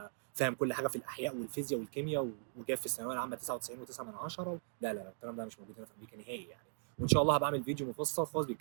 فاهم كل حاجه في الاحياء والفيزياء والكيمياء وجايب في الثانويه العامه 99.9. لا لا، الكلام ده مش موجود هنا في امريكا نهائي يعني. وان شاء الله هبقى اعمل فيديو مفصل خالص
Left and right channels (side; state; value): left; silent; digital silence